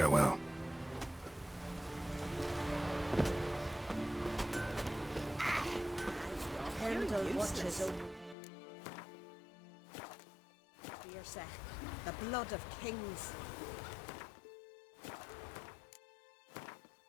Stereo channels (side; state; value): right; drops out; at 8.3 s